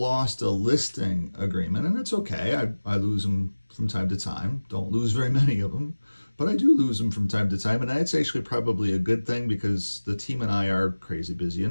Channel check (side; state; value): both; inverted; correlation -1.00